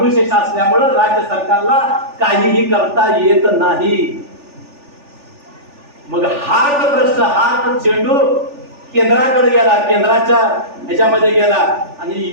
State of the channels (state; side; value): late; left; 3.4 ms